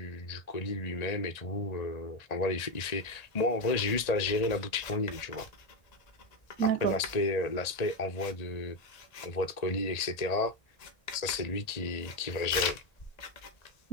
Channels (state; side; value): late; right; 1.8 ms